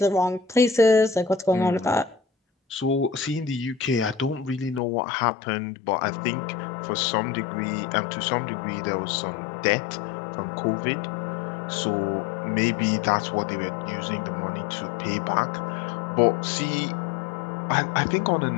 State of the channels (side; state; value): right; drops out; at 4.8 s